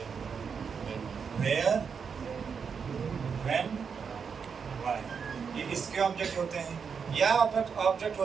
वेयर, व्हेन, व्हाई। ये इसके ऑब्जेक्ट होते हैं या ऑब्जेक्ट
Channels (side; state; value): left; quieter; 6.2 dB